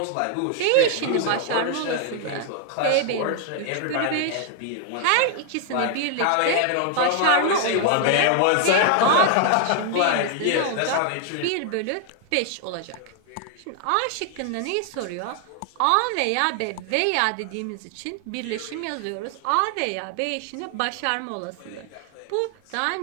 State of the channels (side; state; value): both; different; correlation 0.00